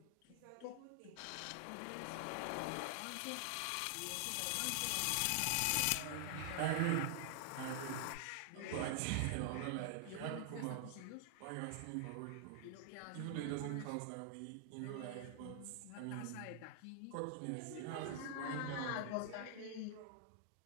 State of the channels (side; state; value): both; different; correlation 0.00